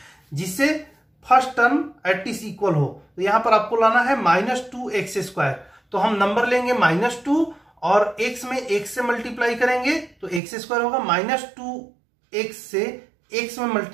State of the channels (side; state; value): left; drops out; at 10.4 s